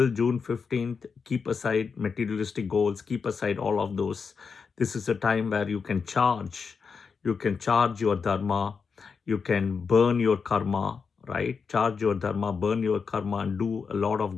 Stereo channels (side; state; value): right; quieter; 5.6 dB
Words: June 15th, keep aside materialistic goals, keep aside all of those. This is a time where you can charge. You can charge your dharma. You can burn your karma, right? Charge your dharma, burn your karma, and do a lot